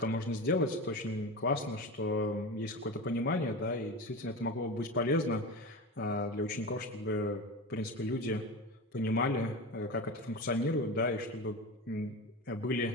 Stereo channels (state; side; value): normal; both; correlation 0.25